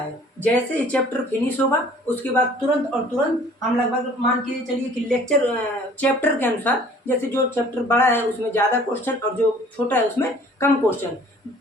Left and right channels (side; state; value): both; normal; correlation 0.52